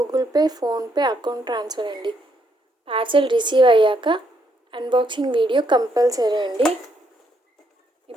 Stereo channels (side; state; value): both; normal; correlation 0.74